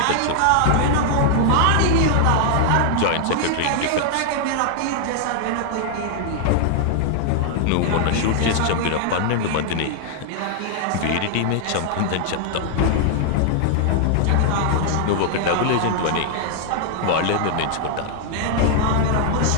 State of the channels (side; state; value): both; different; correlation 0.00